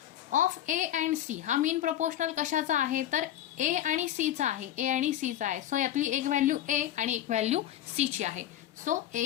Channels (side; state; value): right; quieter; 12.1 dB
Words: ऑफ ए अँड सी हा मीन प्रपोर्शनल कशाचा आहे, तर ए आणि सी चा आहे. ए आणि सी चा आहे. सो यातली एक व्हॅल्यू ए आणि एक व्हॅल्यू सी ची आहे. So A